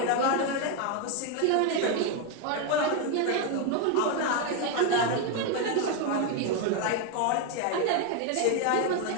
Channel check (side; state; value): both; different; correlation 0.01